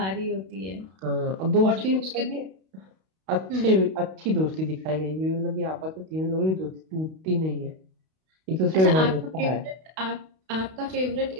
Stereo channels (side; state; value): left; late; 32 ms